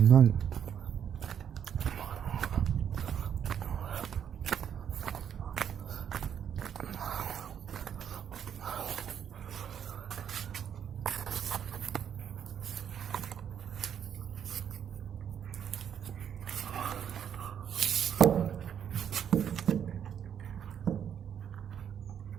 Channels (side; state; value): left; quieter; 8.6 dB